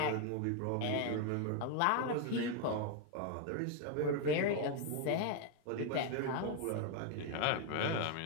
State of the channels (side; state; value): both; different; correlation 0.01